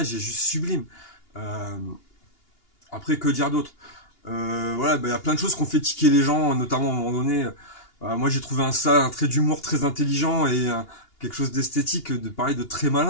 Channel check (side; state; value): right; late; 2.8 ms